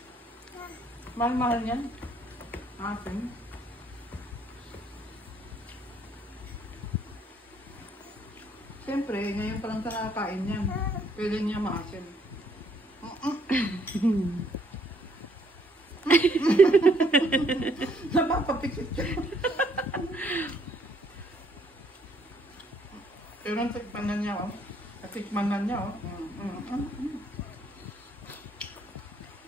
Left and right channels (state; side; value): normal; both; correlation 0.67